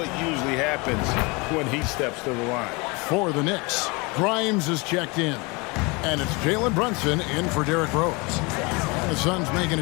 usually happens when he steps to the line. For the Knicks, Grimes is checked in. And it's Jalen Brunson in for Derrick Rose. And the Suns making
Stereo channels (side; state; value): right; quieter; 27.5 dB